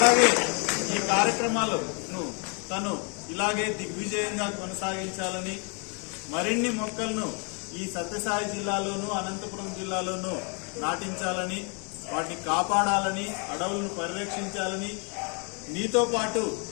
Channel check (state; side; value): quieter; right; 36.0 dB